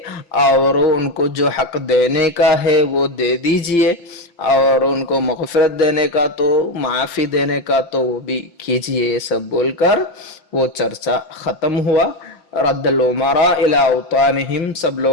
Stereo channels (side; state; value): right; late; 5.8 ms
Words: اور ان کو جو حق دینے کا ہے وہ دے دیجئے اور ان کو مغفرت دینے کا تو معافی دینے کا تو وہ بھی کیجئے. یہ سب بول کر وہ چرچا ختم ہوا. رد الامراء الى اوطانہم سب